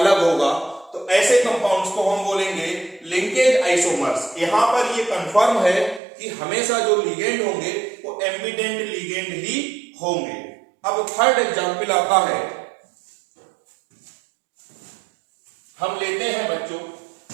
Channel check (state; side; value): drops out; left; at 6.0 s